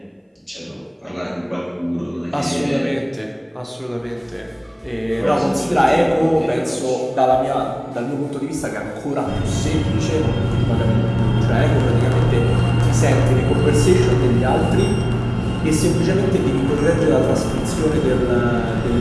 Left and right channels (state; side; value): identical; both; correlation 1.00